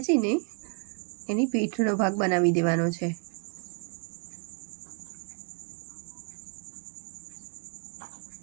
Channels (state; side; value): quieter; left; 36.9 dB